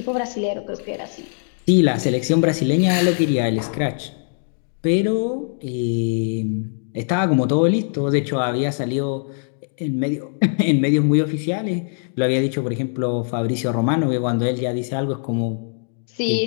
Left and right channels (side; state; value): right; silent; digital silence